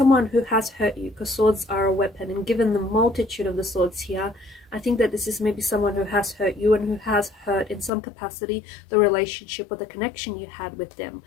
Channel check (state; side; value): drops out; right; at 7.9 s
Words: who has hurt you, because swords are a weapon, and given the multitude of the swords here, I think that this is maybe someone who has hurt you and who has hurt in some capacity the relationship or the connection you had with them.